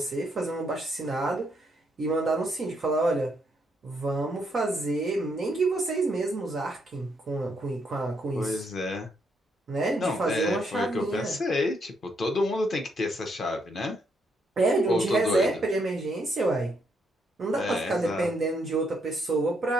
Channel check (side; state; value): both; normal; correlation 0.75